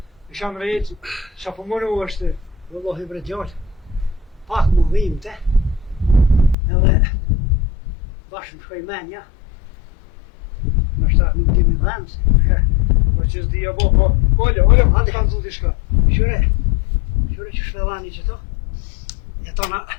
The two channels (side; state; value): right; drops out; at 6.6 s